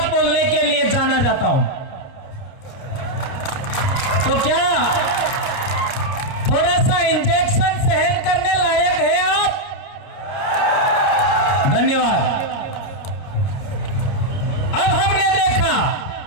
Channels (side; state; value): right; late; 29 ms